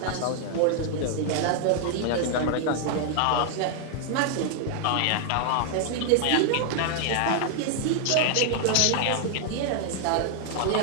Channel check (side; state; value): both; different; correlation 0.00